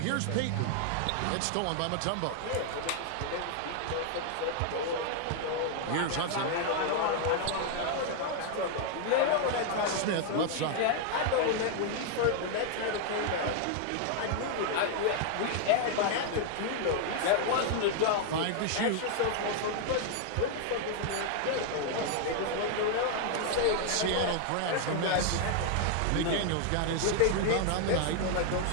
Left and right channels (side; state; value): both; different; correlation 0.00